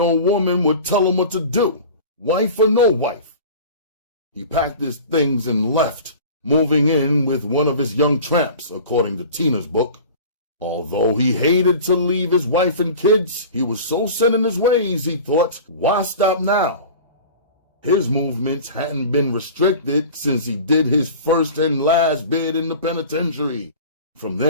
woman would tell him what to do, wife or no wife. He packed his things and left, moving in with one of his young tramps, according to Tina's book. Although he hated to leave his wife and kids, he was so set in his ways, he thought, why stop now? His movements hadn't been restricted since he did his first and last bid in the penitentiary. From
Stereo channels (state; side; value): inverted; both; correlation -0.38